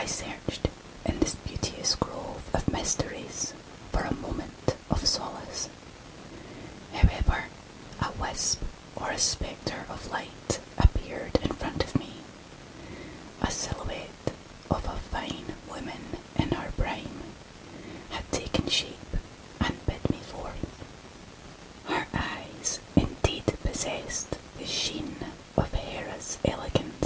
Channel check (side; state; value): both; identical; correlation 1.00